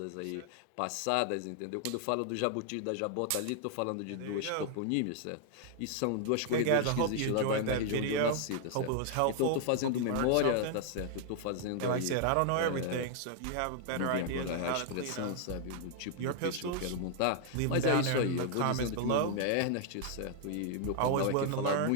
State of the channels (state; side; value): different; both; correlation 0.00